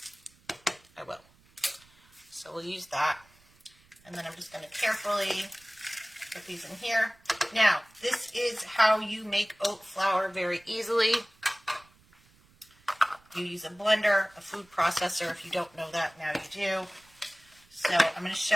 I will. So we'll use that. And then I'm just going to carefully put these in here. Now, this is how you make oat flour very easily. You use a blender, a food processor. If you don't know that, now you do. So I'm going to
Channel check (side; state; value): right; noise; rumble, 30 dB below the sound